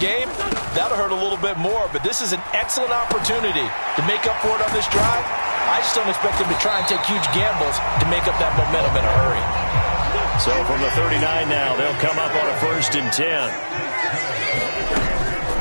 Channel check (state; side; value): inverted; both; correlation -1.00